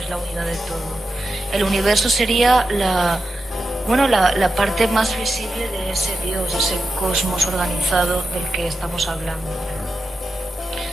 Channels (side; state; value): both; normal; correlation 0.91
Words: es la unidad de todo. El universo sería la parte más visible de ese Dios, ese cosmos organizado del que estamos hablando.